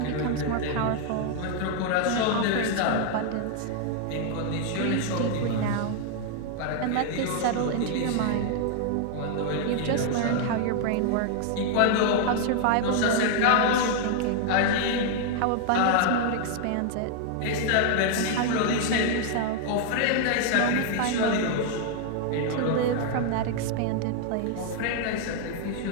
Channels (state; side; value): different; both; correlation 0.00